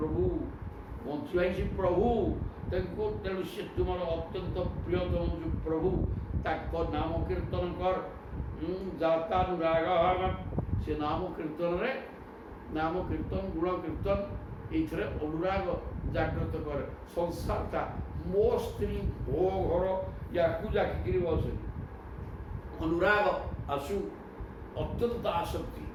ବଞ୍ଚିବା ହିଁ ସେ ପ୍ରଭୁ ତାଙ୍କୁ ତେଣୁ ସେ ତୁମର ଅତ୍ୟନ୍ତ ପ୍ରିୟତମ ଯେଉଁ ପ୍ରଭୁ ତାଙ୍କ ନାମ କୀର୍ତ୍ତନ କର ଜାତାନୁରାଗ ସେ ନାମ କୀର୍ତ୍ତନରେ ନାମ କୀର୍ତ୍ତନ ଗୁଣ କୀର୍ତ୍ତନ ଏଇଥିରେ ଅନୁରାଗ ଜାଗ୍ରତ କରେ ସଂସାରଟା ମୋ ସ୍ତ୍ରୀ ମୋ ଘର ୟାକୁ ଜାକିକିରି ବସେ ଅନୁରାଗ ଆସୁ ଅତ୍ୟନ୍ତ ଆସକ୍ତି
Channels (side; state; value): both; identical; correlation 1.00